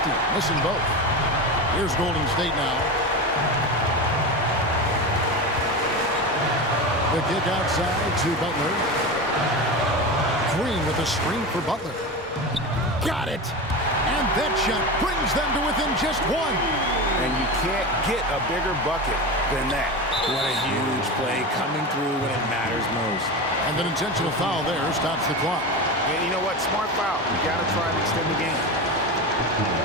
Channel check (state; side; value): normal; both; correlation 0.23